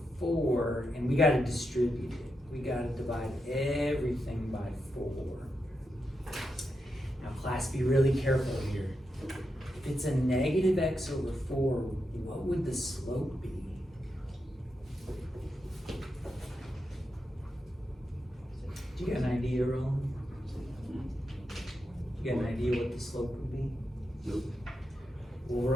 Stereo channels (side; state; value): both; normal; correlation 0.86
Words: 4, and we got to distribute it. We got to divide everything by 4. Now, class, be really careful here. If it's a negative x over 4, what would the slope be? Do you got an idea, Roland? You got an idea what the slope would be? Nope. Well,